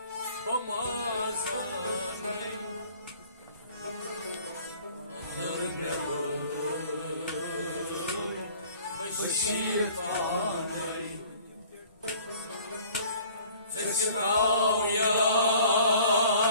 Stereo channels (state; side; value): inverted; both; correlation -0.52